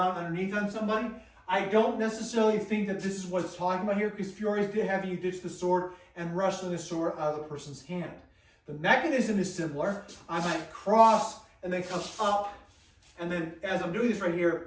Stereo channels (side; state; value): both; identical; correlation 1.00